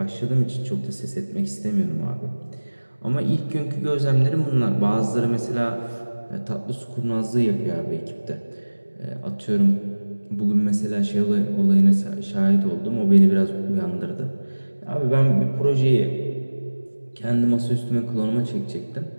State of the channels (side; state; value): both; inverted; correlation -1.00